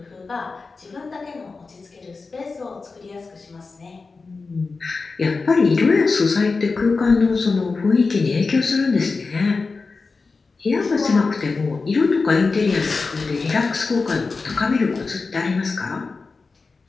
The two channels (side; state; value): right; quieter; 4.2 dB